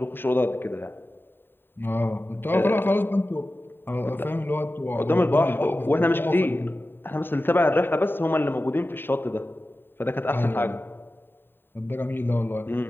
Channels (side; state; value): right; late; 0.099 ms